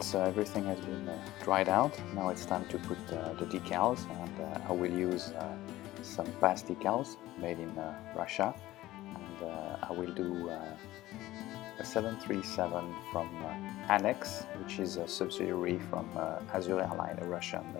Everything has been dried out. Now it's time to put the decals, and I will use some past decals made in Russia, and I will do a 737 from Anex, which is a subsidiary from Azur Airline, a Russian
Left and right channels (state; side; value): quieter; right; 16.4 dB